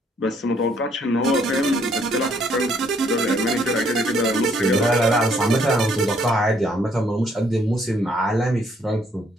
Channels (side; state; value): both; normal; correlation 0.67